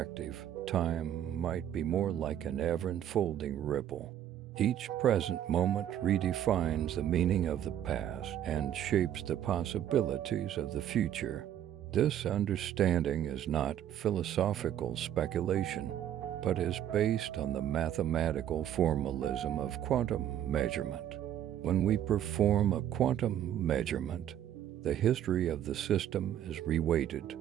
time might be more like an ever-unfolding ripple. Each present moment redefines the meaning of the past and shapes the possibilities of the future. This understanding is not philosophical speculation, but is based on the mathematical formalism of quantum measurement. When we perform a quantum measurement, the history of the system is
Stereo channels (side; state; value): left; quieter; 10.8 dB